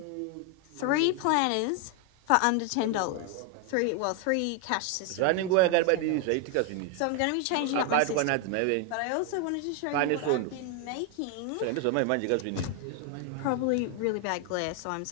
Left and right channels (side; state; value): both; different; correlation 0.01